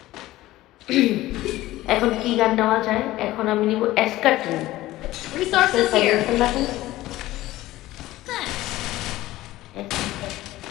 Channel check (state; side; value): quieter; right; 16.5 dB